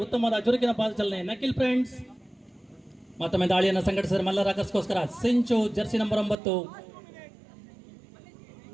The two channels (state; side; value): drops out; left; at 6.4 s